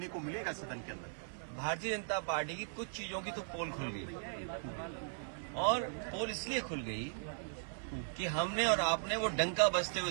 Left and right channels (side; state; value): left; silent; 52 dB below the other